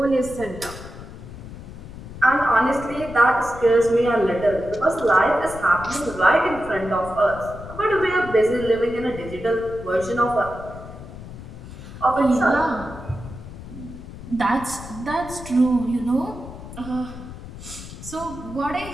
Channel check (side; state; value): left; noise; rumble, 13 dB below the sound